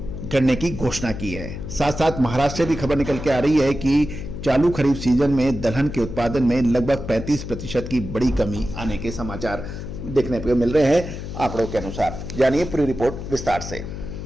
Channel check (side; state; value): left; noise; hum, 8 dB below the sound